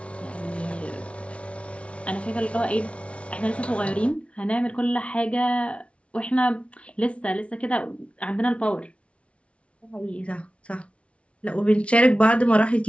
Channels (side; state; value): right; late; 0.061 ms